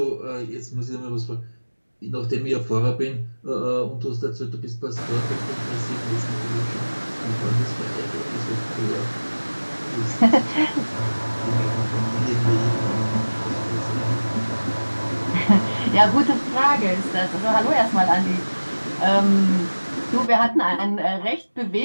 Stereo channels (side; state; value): both; inverted; correlation -1.00